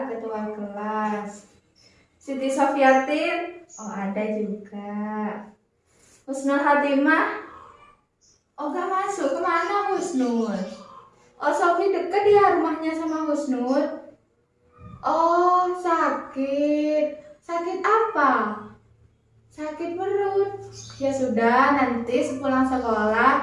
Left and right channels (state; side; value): identical; both; correlation 1.00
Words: ketua kelas. Siti Sofiatin, oh ada juga. Husnul Hatimah, oh gak masuk, kemana Husnul? Oh Sofi deket ya rumahnya sama Husnul. Oh sakit apa? Sakit perut. Ya sudah, nanti sepulang